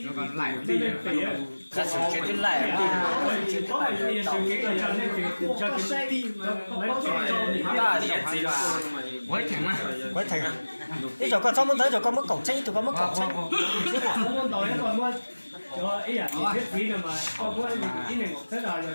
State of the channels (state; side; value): inverted; both; correlation -1.00